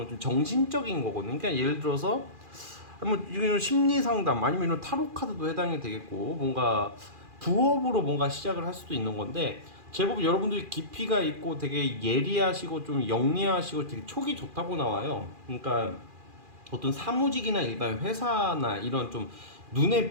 좀 정신적인 거거든요. 그러니까 예를 들어서 뭐 이건 심리 상담, 아니면 이런 타로 카드도 해당이 되겠고, 뭔가 부업으로 뭔가 시작을 할 수도 있는 건데, 제법 여러분들이 깊이가 있고 되게 예리하시고 좀 영리하시고 되게 촉이 좋다고 나와요. 그러니까 어떤 사무직이나 일반 회사나 이런 좀 눈에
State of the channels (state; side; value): late; left; 2.4 ms